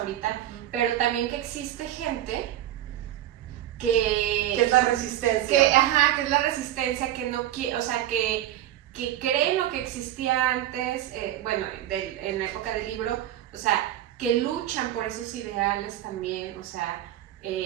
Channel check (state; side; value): quieter; left; 12.8 dB